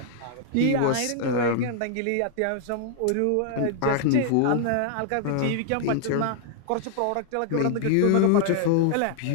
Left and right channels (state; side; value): different; both; correlation -0.01